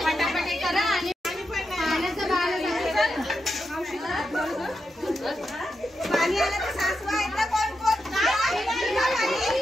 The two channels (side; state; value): both; normal; correlation 0.87